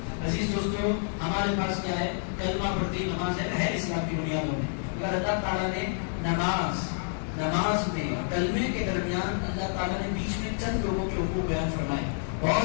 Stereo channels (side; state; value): right; silent; digital silence